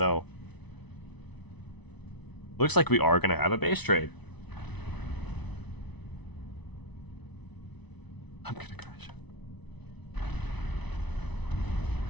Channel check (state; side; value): late; right; 0.99 ms